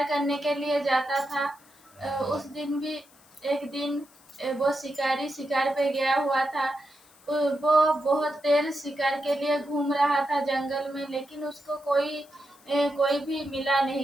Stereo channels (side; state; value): left; noise; hiss, 28 dB below the sound